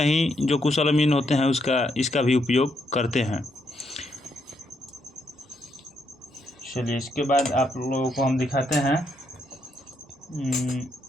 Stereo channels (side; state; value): both; normal; correlation 0.77